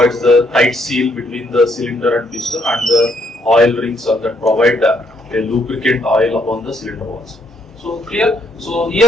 the tight seal between the cylinder and piston, and the oil rings that provide a lubricant oil upon the cylinder walls. So clear? So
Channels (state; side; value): normal; both; correlation 0.72